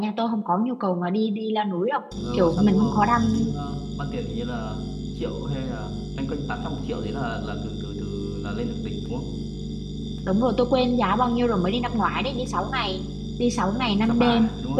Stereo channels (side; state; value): both; identical; correlation 1.00